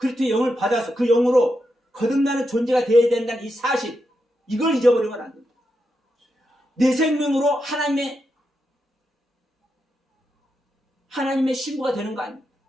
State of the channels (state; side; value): normal; both; correlation 0.85